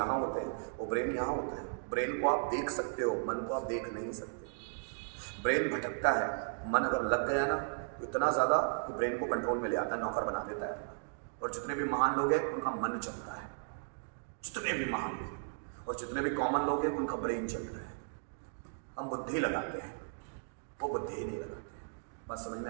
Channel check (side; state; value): left; silent; digital silence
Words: होते हैं, वो ब्रेन यहां होता है। ब्रेन को आप देख सकते हो, मन को आप देख नहीं सकते। ब्रेन भटकता है, मन अगर लग गया ना तो इतना ज्यादा कि ब्रेन को कंट्रोल में ले आता है, नौकर बना देता है। और जितने भी महान लोग हैं उनका मन चलता है, जितने भी महान लोग, और जितने भी कॉमन लोग हैं उनका ब्रेन चल रहा है। हम बुद्धि लगाते हैं, वो बुद्धि ही नहीं लगाते हैं। बात समझ